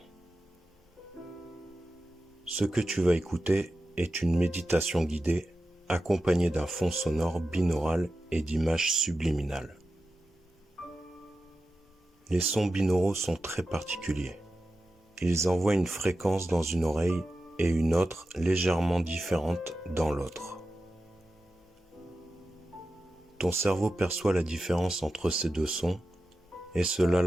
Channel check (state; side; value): normal; both; correlation 0.92